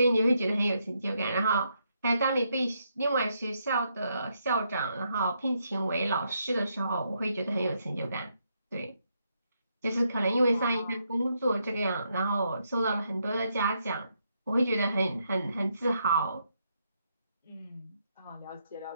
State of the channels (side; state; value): both; inverted; correlation -0.78